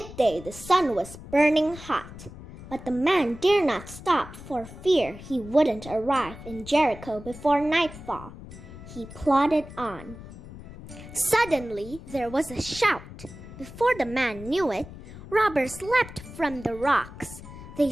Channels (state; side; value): noise; left; rumble, 15 dB below the sound